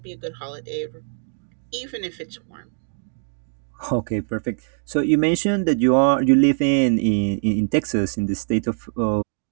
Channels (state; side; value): silent; left; digital silence